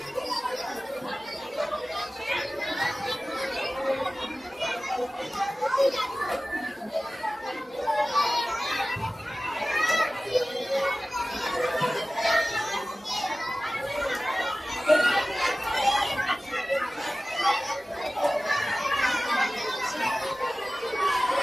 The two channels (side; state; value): both; normal; correlation 0.97